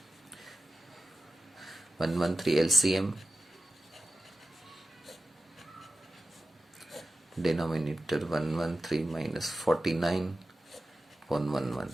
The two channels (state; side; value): normal; both; correlation 0.95